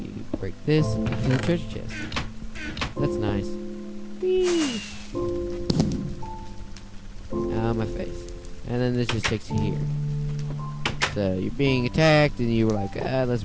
break this and get to the treasure chest. That's nice. Whee! Ow, my face. And then this just takes you here. So you're being attacked, and you were like, let's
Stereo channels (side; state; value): both; identical; correlation 1.00